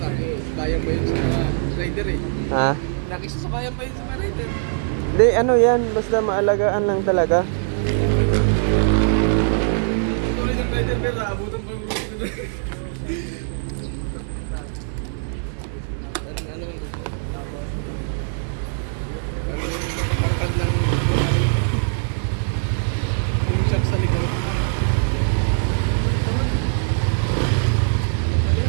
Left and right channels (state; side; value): silent; left; digital silence